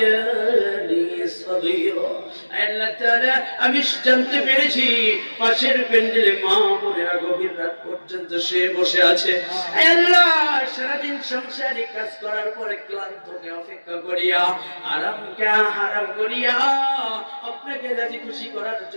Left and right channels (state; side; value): inverted; both; correlation -1.00